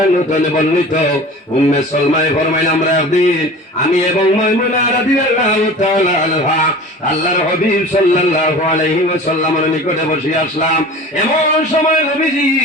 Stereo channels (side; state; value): both; normal; correlation 0.39